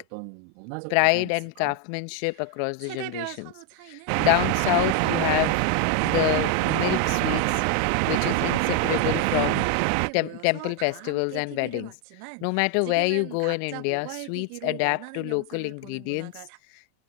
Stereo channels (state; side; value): different; both; correlation 0.01